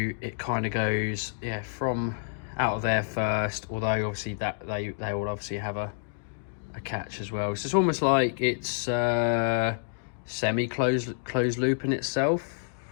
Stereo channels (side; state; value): right; silent; digital silence